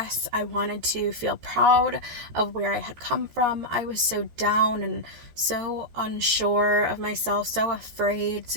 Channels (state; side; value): late; left; 14 ms